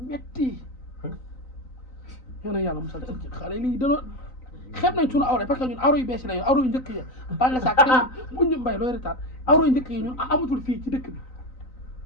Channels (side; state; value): right; late; 3.9 ms